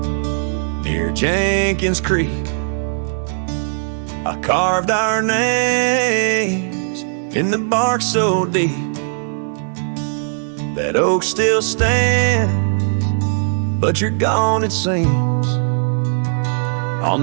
near Jenkins Creek, I carved our names in the bark so deep. That oak still stands, but you're gone it seems, on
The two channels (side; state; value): left; silent; digital silence